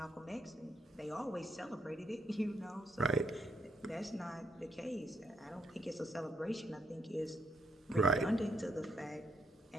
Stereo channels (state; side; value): normal; both; correlation 0.75